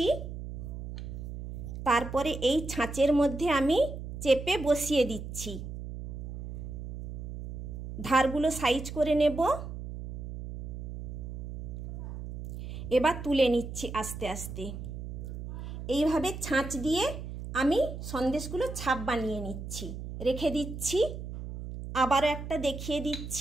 তারপরে এই ছাঁচের মধ্যে আমি চেপে বসিয়ে দিচ্ছি। ধারগুলো সাইজ করে নেব। এবার তুলে নিচ্ছি আস্তে আস্তে। এইভাবে ছাঁচ দিয়ে আমি সন্দেশগুলো ছাপ বানিয়ে নিচ্ছি, রেখে দিচ্ছি। আবারও একটা দেখিয়ে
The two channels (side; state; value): right; noise; hum, 8 dB below the sound